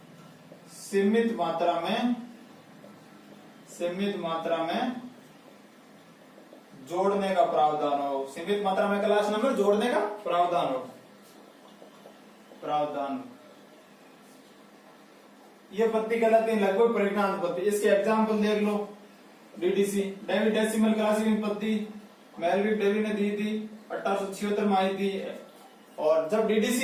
सीमित मात्रा में जोड़ने का प्रावधान हो। सीमित मात्रा में क्लास नंबर जोड़ने का प्रावधान हो। ये पद्धति कहलाती है लगभग परिगणनात्मक पद्धति। इसके एग्जाम्पल देख लो। डीडीसी डेसिमल क्लासिफिकेशन पद्धति मेलविक डेवी ने दी थी 1876 में आई थी। और जब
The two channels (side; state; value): both; identical; correlation 1.00